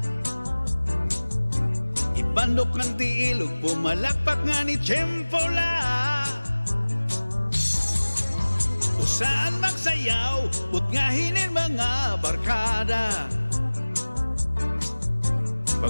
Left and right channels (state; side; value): inverted; both; correlation -1.00